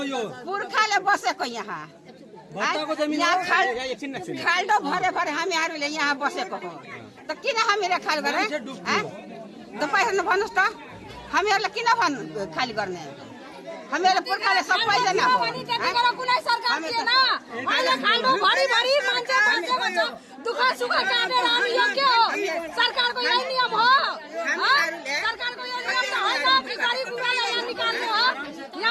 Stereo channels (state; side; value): identical; both; correlation 1.00